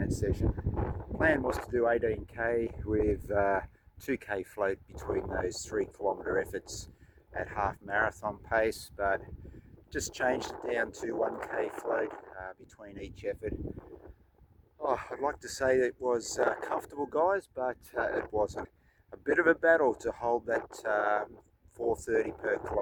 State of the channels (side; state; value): both; identical; correlation 1.00